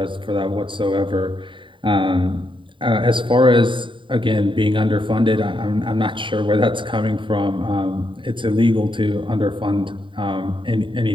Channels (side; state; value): left; late; 0.24 ms